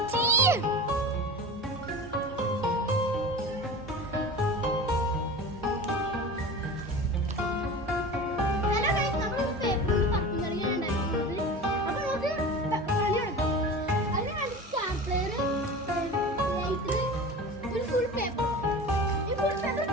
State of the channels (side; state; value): both; normal; correlation 0.33